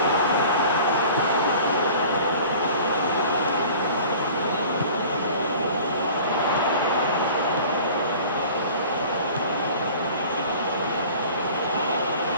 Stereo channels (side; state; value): both; inverted; correlation -0.44